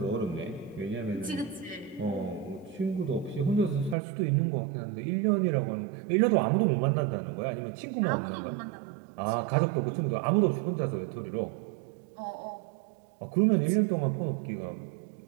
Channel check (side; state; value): left; drops out; at 4.0 s